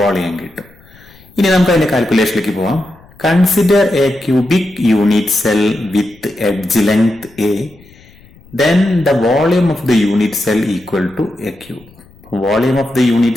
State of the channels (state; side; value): noise; left; rumble, 26 dB below the sound